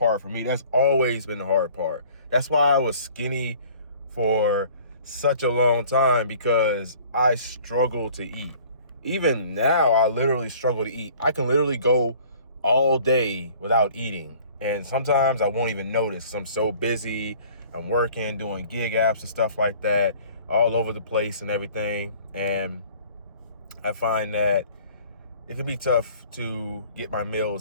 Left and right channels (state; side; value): inverted; both; correlation -0.51